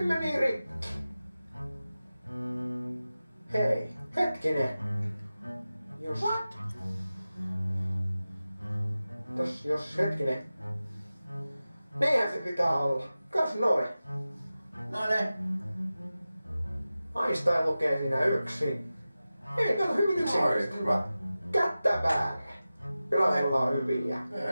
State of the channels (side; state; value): both; inverted; correlation -0.95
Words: meni rikki. Hei, hetkinen. Jos... What? Jos hetkinen. Niinhän se pitää olla. Kas noin. No ne. Einstein lukee siinä yksin. Ei, kato hyvin yksinkertaisesti. Hyvä. Kättä päälle. Kyllä me ollaan hyviä.